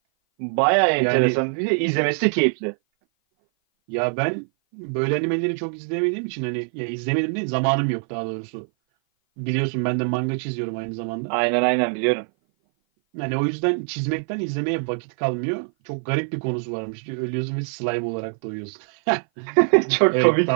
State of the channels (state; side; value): silent; left; 57 dB below the other